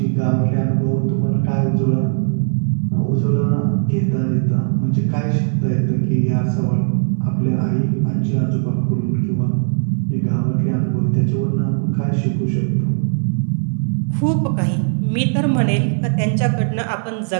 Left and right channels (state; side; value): silent; left; 67 dB below the other